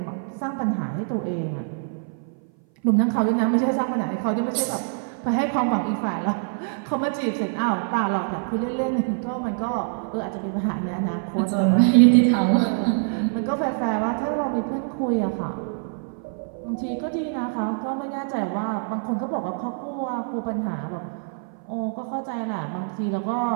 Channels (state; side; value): silent; left; 58 dB below the other